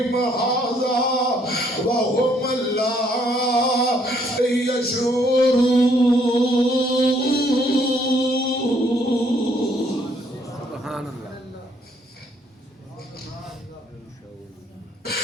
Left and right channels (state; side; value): normal; both; correlation 0.67